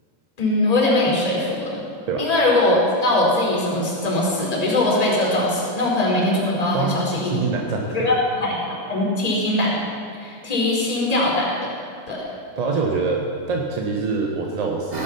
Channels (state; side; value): late; right; 1.8 ms